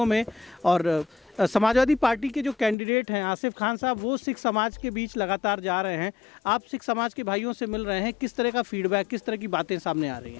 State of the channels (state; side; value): drops out; right; at 2.8 s